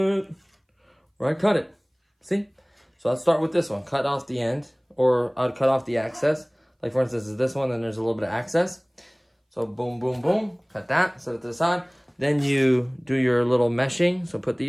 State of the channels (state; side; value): identical; both; correlation 1.00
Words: where I cut it. See? So I'll start with this one. Cut off the end, or I'd cut off the access. Like for instance, is this one, then there's a little bit of access. So boom, boom, boom. Cut that, set it to the side. Then you do your little meshing. So put